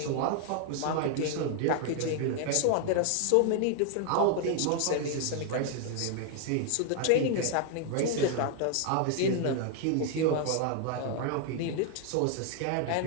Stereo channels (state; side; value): different; both; correlation 0.00